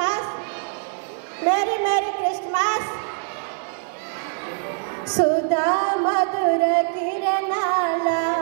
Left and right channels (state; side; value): silent; left; digital silence